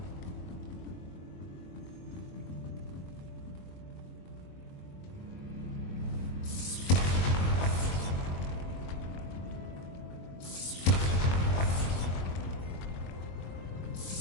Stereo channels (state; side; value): late; right; 22 ms